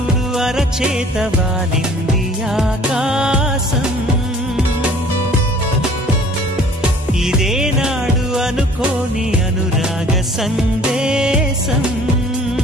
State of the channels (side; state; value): both; normal; correlation 0.52